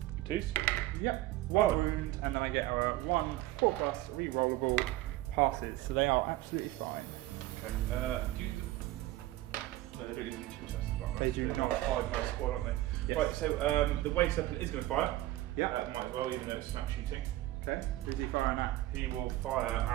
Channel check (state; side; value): quieter; left; 16.3 dB